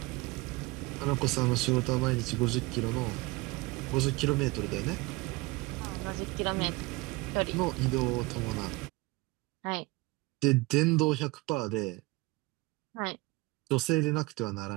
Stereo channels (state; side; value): quieter; left; 22.8 dB